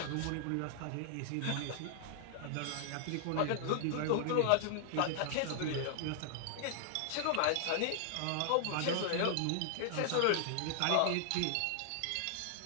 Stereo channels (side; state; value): both; different; correlation 0.00